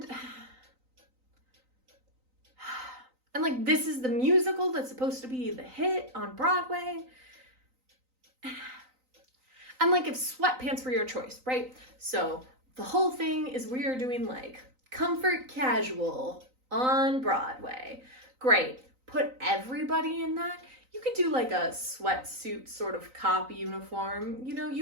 like, this is the musical that's supposed to be the hit on Broadway. And like, if sweatpants were your choice, right? So the whole thing is we are doing like comfort casual on Broadway. Great. Put everybody in that. You could do like a sweatsuit sort of cop uniform. You know,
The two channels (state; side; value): late; left; 3.9 ms